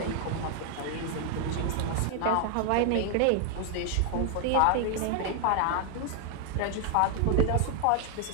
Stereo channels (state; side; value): different; both; correlation 0.00